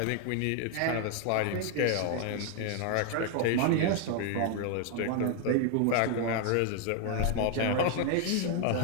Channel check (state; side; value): different; both; correlation 0.00